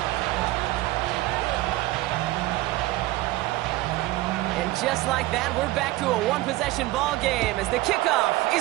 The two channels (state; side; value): quieter; left; 18.2 dB